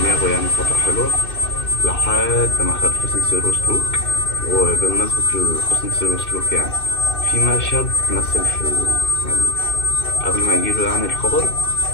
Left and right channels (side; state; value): right; late; 2.6 ms